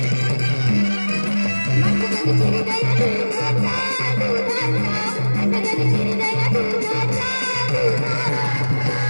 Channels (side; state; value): both; inverted; correlation -1.00